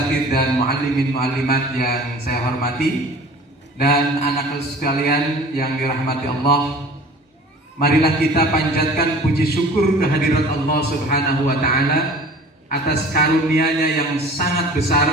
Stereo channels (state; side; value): normal; both; correlation 0.45